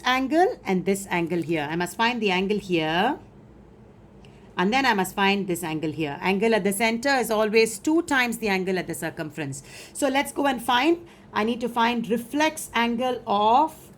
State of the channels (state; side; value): identical; both; correlation 1.00